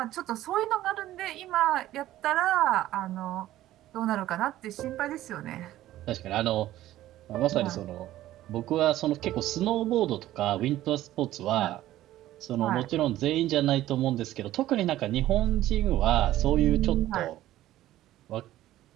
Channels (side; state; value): left; quieter; 14.4 dB